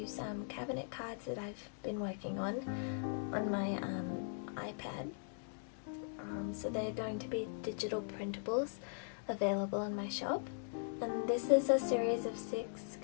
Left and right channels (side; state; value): right; silent; digital silence